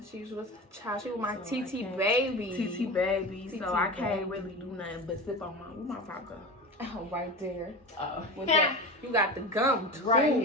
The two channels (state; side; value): normal; both; correlation 0.28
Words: She was with my So TT baby. TT baby. TT So I can't baby. really do nothing but sip on my vodka. Oh, right there. Oh, With that, you got the gum too. right